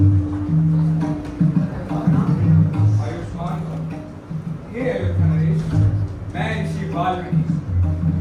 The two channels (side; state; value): both; identical; correlation 1.00